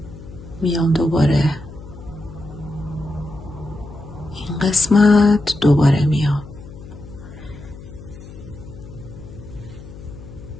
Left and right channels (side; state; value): left; noise; hum, 16 dB below the sound